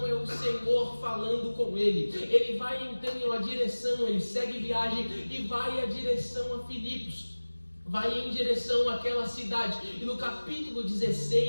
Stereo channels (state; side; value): inverted; both; correlation -1.00